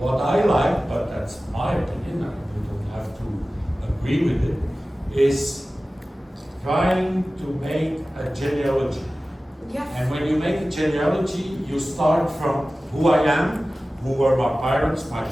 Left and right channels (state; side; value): normal; both; correlation 0.96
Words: I like, but that's my opinion, and you don't have to agree with it, is trying to make a genealogy. Yes. And when you make a genealogy, you start from who I am, who were my parents, my